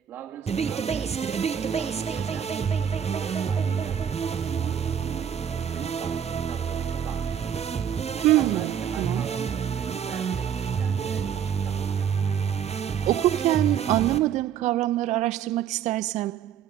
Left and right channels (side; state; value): left; quieter; 8.7 dB